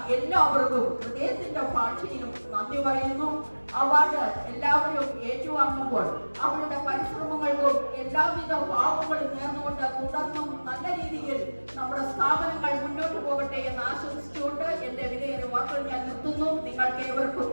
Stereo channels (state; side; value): inverted; both; correlation -1.00